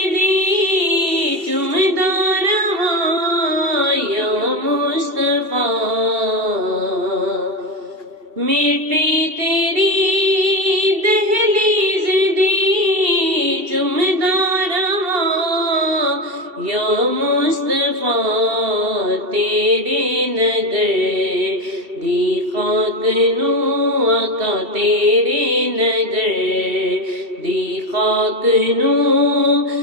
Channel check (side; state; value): left; late; 2.7 ms